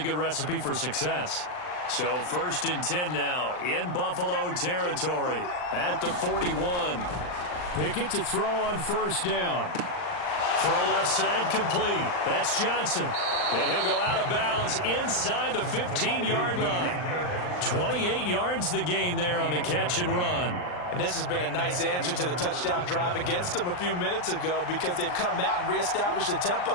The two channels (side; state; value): right; late; 39 ms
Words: good recipe for success. So 1st and 10 now in Buffalo territory at the 41. Pickett to throw on 1st down. Throw left side complete. That's Johnson. And he'll go out of bounds inside the 15-yard line. 28 yards the gain there on the catch and run. And this has been a nice answer to the touchdown drive against them a few minutes ago because they've come out and reestablished the tempo.